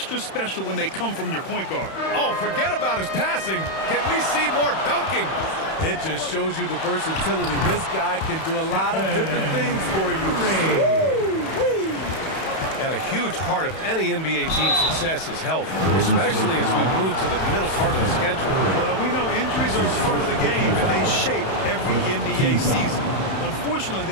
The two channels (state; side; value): late; right; 31 ms